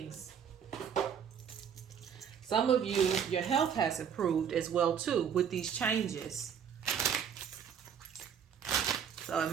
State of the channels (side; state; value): left; quieter; 7.9 dB